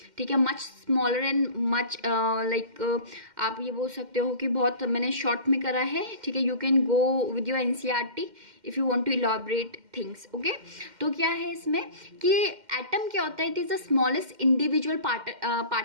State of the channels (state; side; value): late; left; 2.1 ms